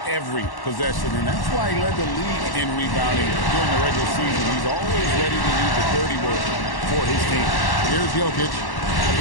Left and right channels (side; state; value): right; late; 1.1 ms